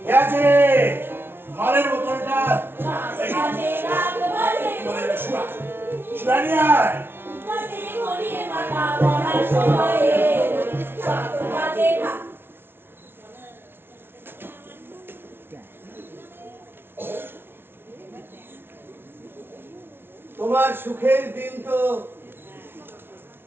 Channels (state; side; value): late; left; 0.11 ms